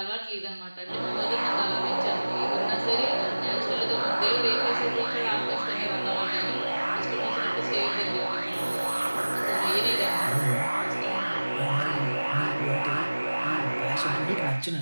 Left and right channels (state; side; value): inverted; both; correlation -1.00